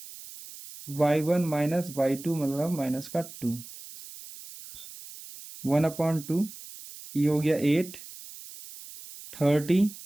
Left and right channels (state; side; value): noise; right; hiss, 15 dB below the sound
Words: y1 माइनस y2 मतलब माइनस का 2, 1/2, ये हो गया 8, 30,